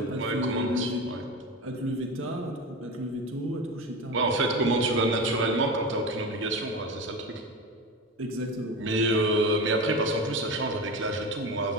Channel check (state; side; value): normal; both; correlation 0.25